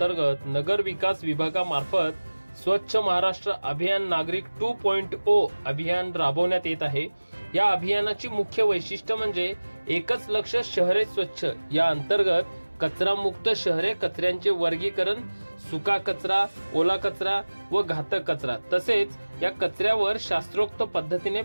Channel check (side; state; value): both; inverted; correlation -1.00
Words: नगर विकास विभागामार्फत स्वच्छ महाराष्ट्र अभियान नागरिक 2.0 अभियान राबवण्यात येत आहे। या अभियानाची मुख्य वैशिष्ट्य म्हणजे एकच लक्ष शहरे स्वच्छ। या अंतर्गत कचरा मुक्त शहरे, कचऱ्यांचे वर्गीकरण, सुका कचरा, ओला कचरा व घातक कचरा, तसेच या कचऱ्यावर शास्त्रोक्त पद्धतीने